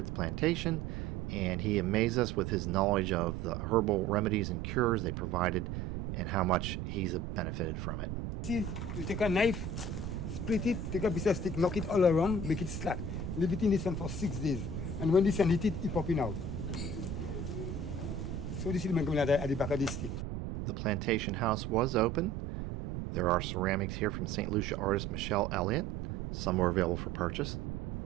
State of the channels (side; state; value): right; noise; rumble, 5 dB below the sound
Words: the plantation, and he amazed us with his knowledge of the herbal remedies and cures they provided and how much he's benefited from it. See, you take a knife, split it, take a piece of stick, knock it all around, make it slack. Leave it in the sun for 6 days. And when the sun hit it, it popping out. So this is at the back of this stick. The plantation house was open. There are ceramics here from St. Lucia artist Michelle Elliott. Some were available for purchase.